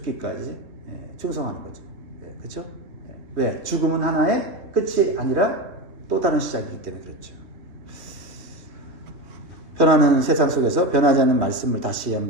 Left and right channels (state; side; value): late; left; 3.2 ms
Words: 충성하는 거죠. 그렇죠? 왜? 죽음은 하나의 끝이 아니라 또 다른 시작이기 때문에 그렇죠. 변하는 세상 속에서 변하지 않는 말씀을 다시